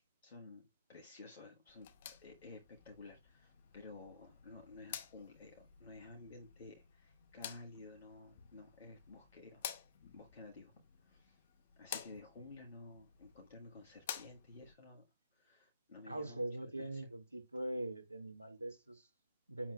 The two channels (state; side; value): inverted; both; correlation -0.74